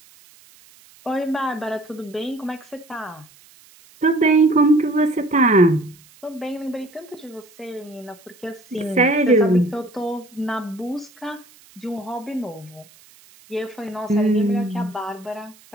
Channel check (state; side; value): noise; right; hiss, 26 dB below the sound